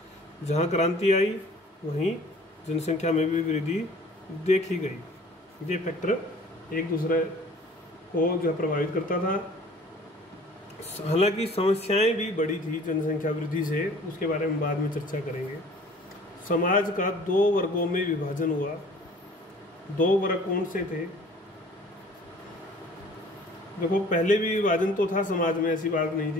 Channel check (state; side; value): normal; both; correlation 0.50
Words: जहां क्रांति आई वहीं जनसंख्या में भी वृद्धि देखी गई। ये फैक्टर एक दूसरे को जो प्रभावित करता था। हालांकि समस्याएं भी बढ़ी थी जनसंख्या वृद्धि से, उसके बारे में बाद में चर्चा करेंगे। समाज का 2 वर्गों में विभाजन हुआ। 2 वर्ग कौन से थे? देखो, पहले भी विभाजन तो था समाज में, ऐसी बात नहीं